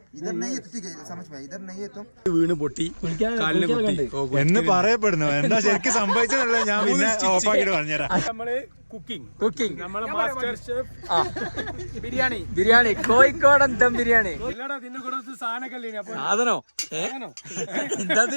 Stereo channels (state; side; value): inverted; both; correlation -1.00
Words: इधर नहीं है तो ठीक है, समझ में इधर नहीं है तो വീണ് പൊട്ടി കാലിന് പൊട്ടി എന്ന് പറയപ്പെടുന്നു. എന്താ ശരിക്കും സംഭവിച്ചതല്ല, ഞാൻ പിന്നെ ഓഫാക്കിട്ട് പറഞ്ഞുതരാം. നമ്മള് കുക്കിംഗ് നമ്മളെ cooking master chef biryani biryani കോഴിക്കോടൻ ദം ബിരിയാണി ഇല്ലടാ ഇതിന്റെ കൂടെ സാധനമൊക്കെ അപ്പൊ സാധനോ എന്താ